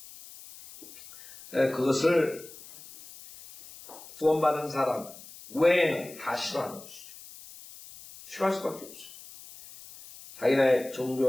그것을 구원받은 사람 외에는 다 싫어하는 것이죠. 싫어할 수밖에 없어요. 자기네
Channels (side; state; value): left; noise; hiss, 18 dB below the sound